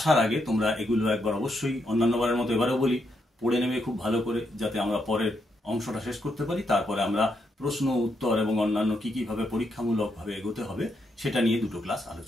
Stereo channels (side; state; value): both; normal; correlation 0.79